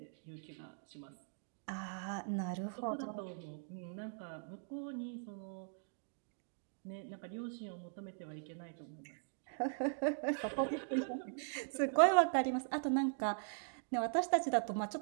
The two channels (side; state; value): left; silent; digital silence